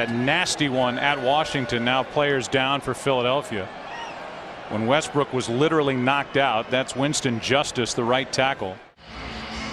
nasty one at Washington. Now players down for Philadelphia. When Westbrook was literally knocked out, that's Winston Justice, the right tackle.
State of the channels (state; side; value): identical; both; correlation 1.00